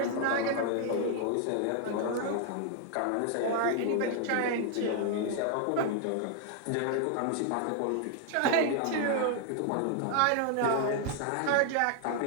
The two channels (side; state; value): both; different; correlation 0.00